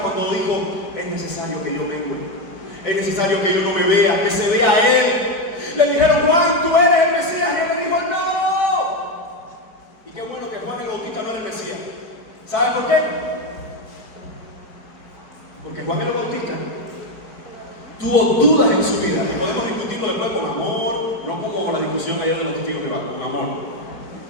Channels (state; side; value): late; right; 4.5 ms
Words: dijo: es necesario que yo mengue, es necesario que yo no me vea, que se vea a Él. Le dijeron: Juan, tú eres el Mesías, y Él le dijo: no. Y qué bueno que Juan el Bautista no era el Mesías. ¿Saben por qué? Porque Juan el Bautista tuvo dudas en su vida, y podemos discutirlo después con amor, no como la discusión ayer de los testigos de Jehová, con amor.